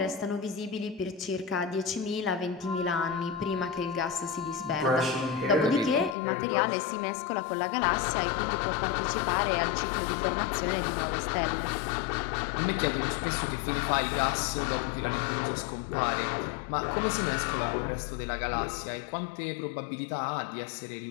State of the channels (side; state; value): right; drops out; at 6.2 s